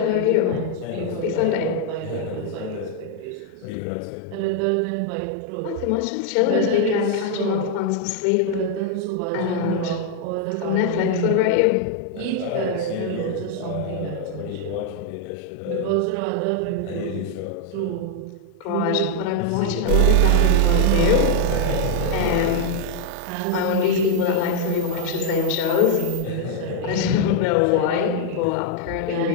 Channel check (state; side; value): different; both; correlation 0.00